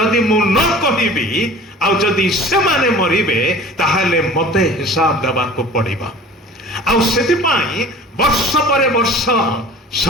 ମୁଁ ନ କହିବି ଆଉ ଯଦି ସେମାନେ ମରିବେ ତାହେଲେ ମତେ ହିସାବ ଦେବାକୁ ପଡ଼ିବ। ଆଉ ସେଥିପାଇଁ ବର୍ଷ ପରେ ବର୍ଷ,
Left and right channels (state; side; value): normal; both; correlation 0.43